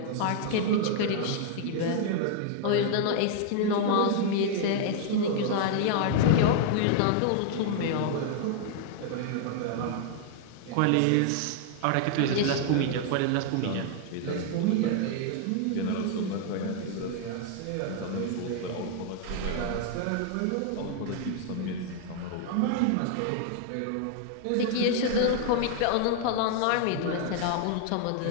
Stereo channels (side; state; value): both; different; correlation 0.00